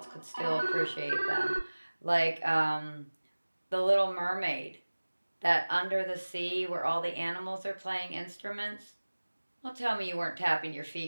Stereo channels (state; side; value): inverted; both; correlation -1.00